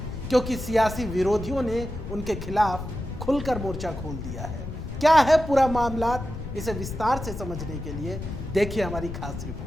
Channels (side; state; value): left; noise; rumble, 9 dB below the sound